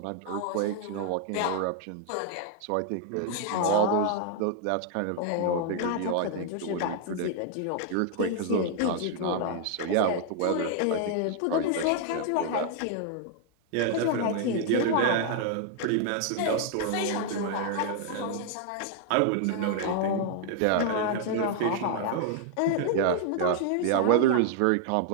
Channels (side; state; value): both; different; correlation 0.00